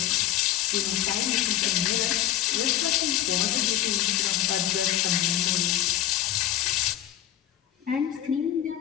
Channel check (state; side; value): quieter; right; 12.1 dB